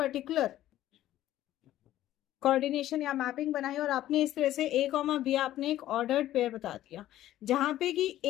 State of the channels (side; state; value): right; quieter; 13.6 dB